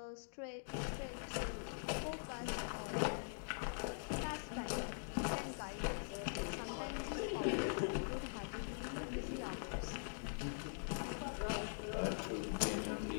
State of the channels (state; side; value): silent; right; digital silence